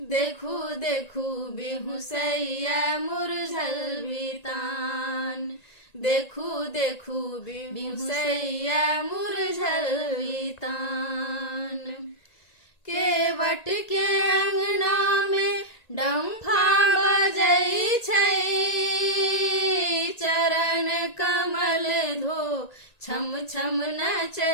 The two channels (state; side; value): late; right; 1.9 ms